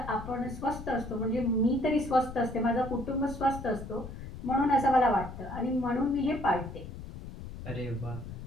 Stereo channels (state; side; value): noise; left; rumble, 11 dB below the sound